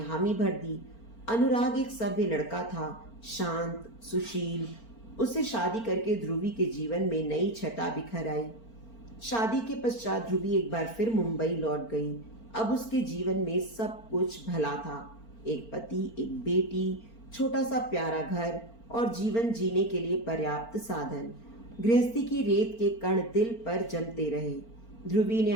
भर दी। अनुराग एक सभ्य लड़का था, शांत, सुशील। उससे शादी करके ध्रुवी के जीवन में नई छटा बिखर आई। शादी के पश्चात ध्रुवी एक बार फिर मुंबई लौट गई। अब उसके जीवन में सब कुछ भला था। एक पति, एक बेटी, छोटा सा प्यारा घर और जीवन जीने के लिए पर्याप्त साधन। गृहस्थी की रेत के कण दिल पर जमते रहे। ध्रुवी ने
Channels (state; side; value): late; right; 4.4 ms